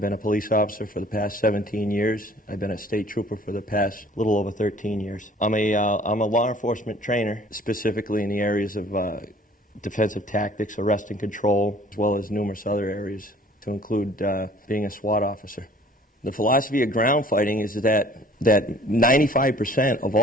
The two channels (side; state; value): both; normal; correlation 0.53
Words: been a police officer for the past 17 years. I've been a state trooper for the past little over 13 years. I'm a law enforcement trainer, specifically in the areas of defensive tactics, arrest and control, as well as numerous other areas, to include being a SWAT officer. The philosophy of ground fighting is that 95% of